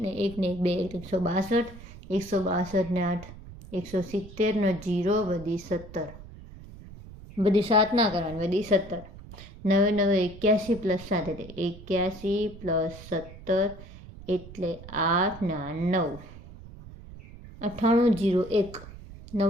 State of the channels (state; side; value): noise; right; rumble, 16 dB below the sound